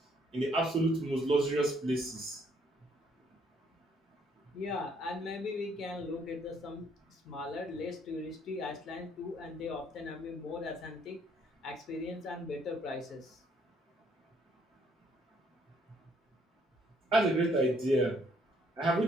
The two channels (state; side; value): normal; both; correlation 0.67